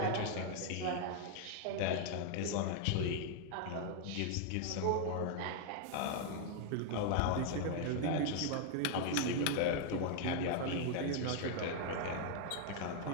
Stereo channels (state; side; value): different; both; correlation 0.00